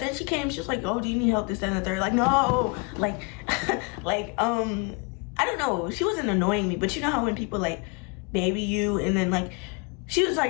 she came, she was like, oh, do you need help, this, that, and the third? Like, no, like, like, I don't know. She wasn't annoying me, but you know how when people like baby you, and then like, she was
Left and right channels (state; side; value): quieter; right; 31.2 dB